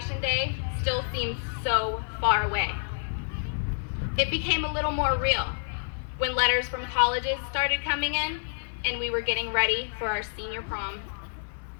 day still seemed so far away. It became a little more real when letters from colleges started coming in and we were getting ready for our senior prom.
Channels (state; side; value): silent; right; 55 dB below the other